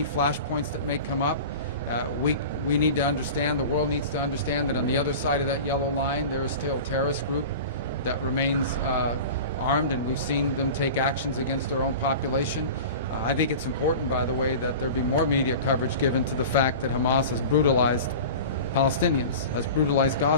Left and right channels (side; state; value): both; inverted; correlation -0.35